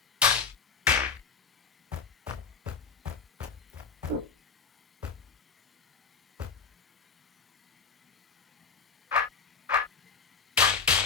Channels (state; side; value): quieter; right; 5.6 dB